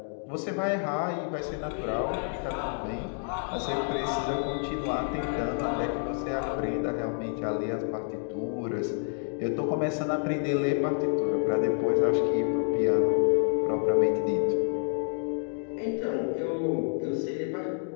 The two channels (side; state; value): right; silent; 56 dB below the other